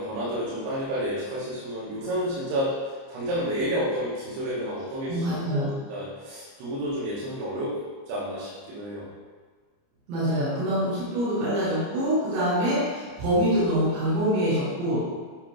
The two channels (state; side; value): late; left; 29 ms